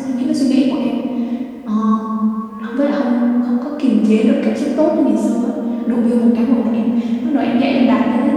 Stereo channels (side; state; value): both; identical; correlation 1.00